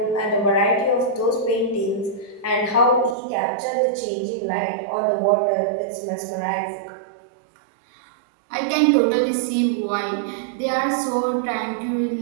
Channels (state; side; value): drops out; left; at 3.2 s